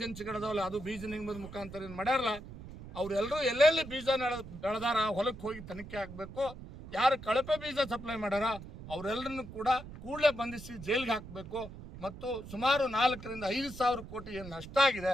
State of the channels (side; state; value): right; noise; rumble, 13 dB below the sound